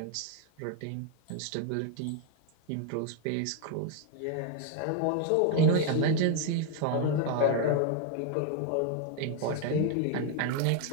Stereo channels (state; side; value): different; both; correlation 0.01